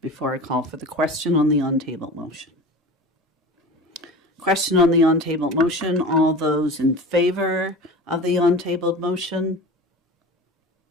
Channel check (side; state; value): both; normal; correlation 0.34